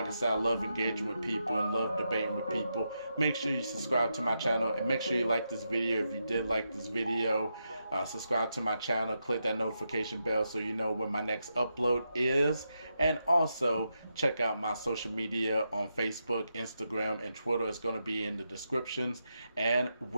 I said, I love engaging with people and love debating with people. Make sure you subscribe to my channel and make sure you like this video. If you did like this video, subscribe to my channel, click that notification bell so you know when my next upload is. And also check out my social media on Facebook, Instagram, and Twitter. It's going to be in the descriptions. And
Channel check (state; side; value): inverted; both; correlation -0.85